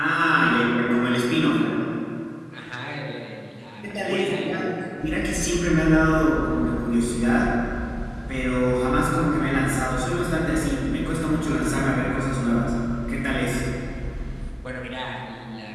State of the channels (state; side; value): identical; both; correlation 1.00